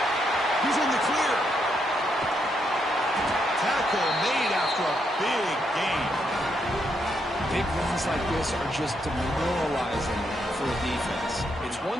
He's in the clear. Tackle made after a big gain. Big runs like this are just demoralizing for a defense. It's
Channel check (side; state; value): both; normal; correlation 0.78